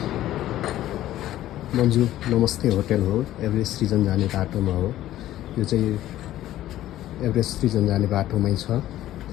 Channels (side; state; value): right; quieter; 13.8 dB